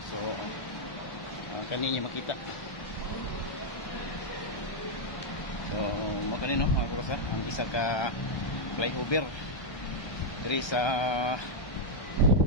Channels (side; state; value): right; late; 1.2 ms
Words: So kaninyo makita. So mo kanino mga kalapatsa ang isa ka flyover diri sa